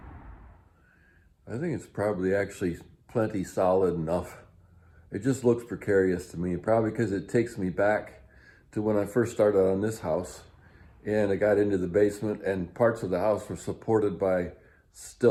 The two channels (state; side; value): identical; both; correlation 1.00